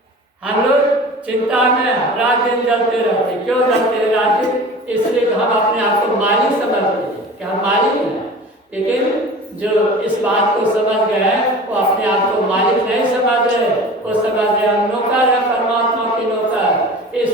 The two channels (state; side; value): normal; both; correlation 0.38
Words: हम लोग चिंता में रात दिन जलते रहते। क्यों जलते हैं रात दिन? इसलिए हम अपने आप को मालिक समझते हैं कि हम मालिक हैं। लेकिन जो इस बात को समझ गए वो अपने आप को मालिक नहीं समझ रहे, वो समझ रहे हम नौकर है, परमात्मा के नौकर। ये